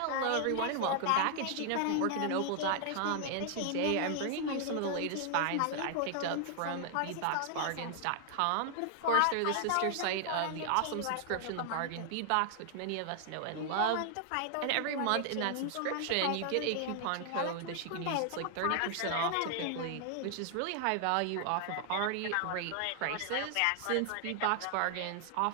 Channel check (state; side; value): different; both; correlation 0.00